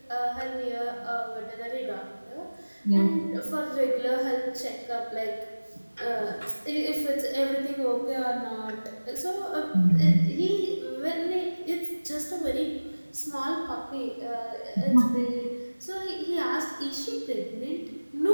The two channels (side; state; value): both; inverted; correlation -1.00